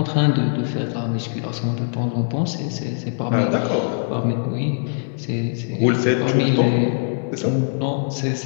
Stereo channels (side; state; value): right; silent; 64 dB below the other